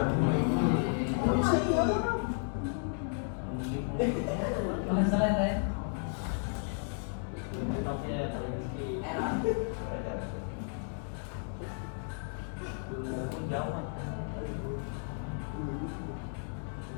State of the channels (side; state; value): right; silent; 55 dB below the other